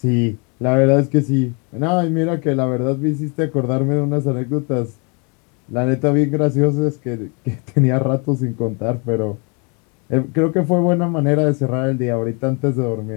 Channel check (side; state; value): right; quieter; 34.0 dB